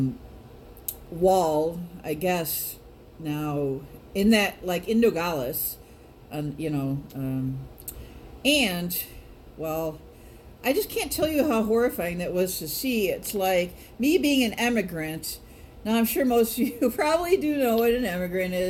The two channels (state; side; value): identical; both; correlation 1.00